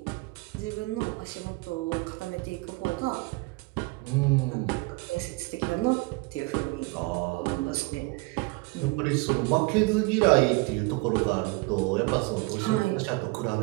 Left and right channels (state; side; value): quieter; left; 25.5 dB